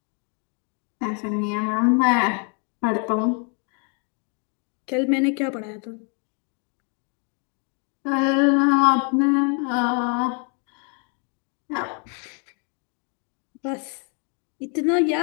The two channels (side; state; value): right; quieter; 38.2 dB